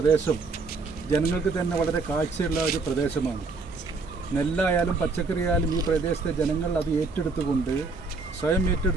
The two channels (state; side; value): quieter; left; 4.0 dB